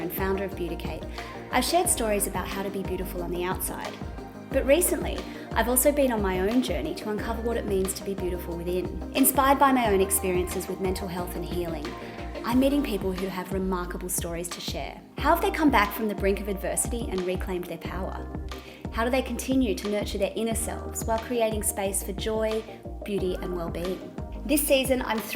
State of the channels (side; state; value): both; identical; correlation 1.00